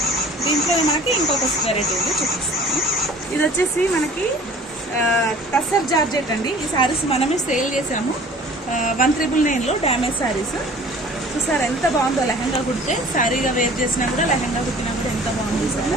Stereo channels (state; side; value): normal; both; correlation 0.48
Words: దీంట్లో మనకి ఇంకొక వెరైటీ ఉంది, చూపిస్తాను. ఇది వచ్చేసి మనకి టస్సర్ జార్జెట్ అండి. ఈ శారీస్ మనమే సేల్ చేసాము 1,999లో డ్యామేజ్ శారీస్. చూసారా ఎంత బాగుందో, లెహంగా కుడితే శారీగా వేర్ చేసినా కూడా లెహంగా కుట్టినా కూడా ఎంత బాగుంది